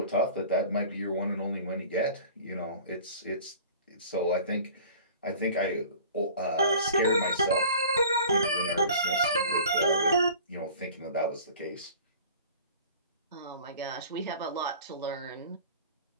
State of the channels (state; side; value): inverted; both; correlation -0.43